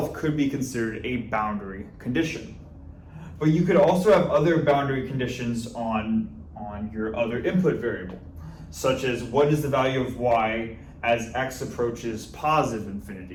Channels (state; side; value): identical; both; correlation 1.00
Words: could be considered a boundary condition. But you could also have other boundary conditions on your other input variable, such as what is the value of y as x approaches positive